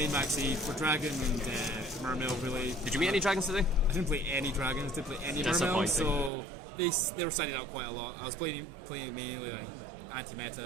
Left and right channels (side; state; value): left; drops out; at 6.3 s